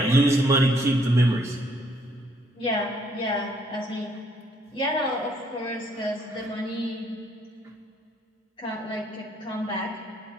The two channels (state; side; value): normal; both; correlation 0.67